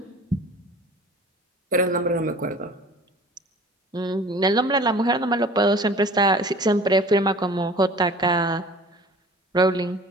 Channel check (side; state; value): both; normal; correlation 0.45